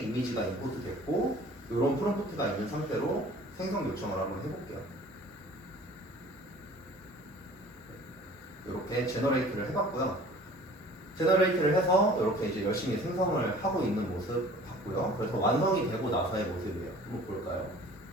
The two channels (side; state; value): both; normal; correlation 0.48